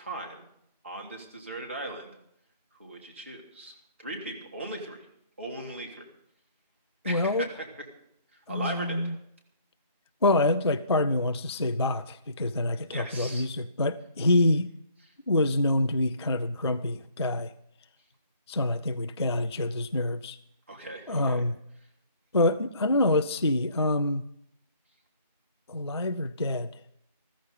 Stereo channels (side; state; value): both; inverted; correlation -0.59